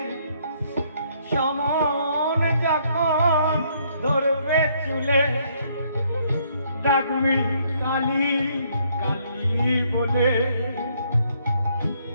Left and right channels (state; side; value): inverted; both; correlation -0.68